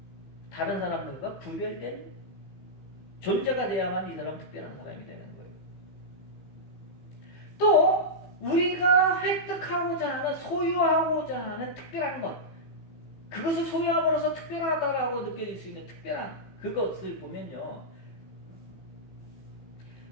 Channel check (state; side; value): late; right; 15 ms